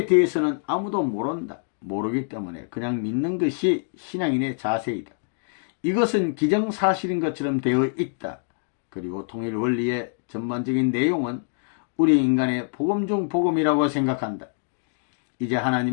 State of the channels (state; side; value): silent; right; digital silence